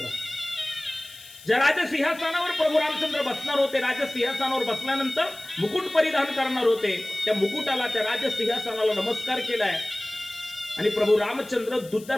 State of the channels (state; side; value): noise; left; hiss, 20 dB below the sound